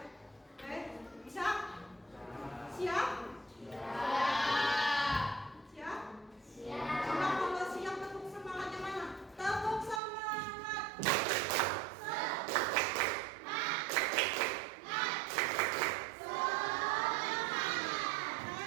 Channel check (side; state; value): left; drops out; at 10.0 s